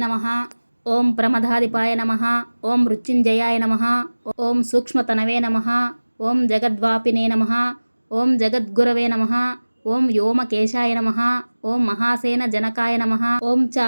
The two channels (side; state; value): both; inverted; correlation -1.00